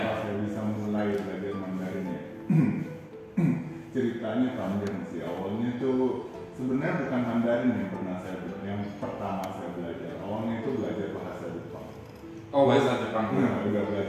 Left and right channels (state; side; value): identical; both; correlation 1.00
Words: saya bisa mulai belajar Mandarin ya? Ceritanya panjang sih. Awalnya tuh sebenarnya bukan Mandarin yang pertama saya belajar. Awalnya itu belajar bahasa Jepang. Oh, bahasa Jepang. Nah, udah